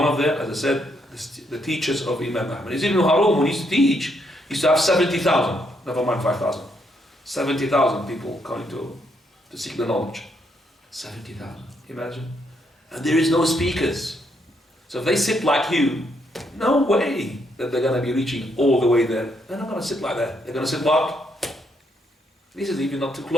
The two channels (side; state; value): both; normal; correlation 0.75